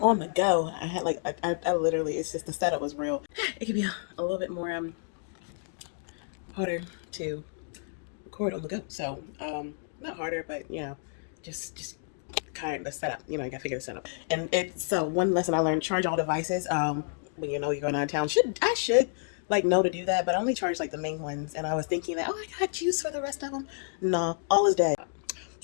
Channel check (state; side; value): silent; right; digital silence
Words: on the go, I had like I literally, it's just the setup was real. It could be a little bit more harder to record on the go. So not harder, but just kind of the setup. You know, you gotta figure the setup. And it's so one lesson I learned: charge all devices. When you know you're going out of town, should like know to do that, but I only charge like the main ones. And I was thinking that, oh, I got juice for the rest of them. No, all is dead.